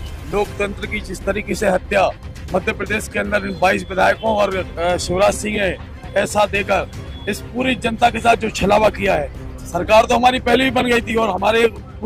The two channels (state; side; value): identical; both; correlation 1.00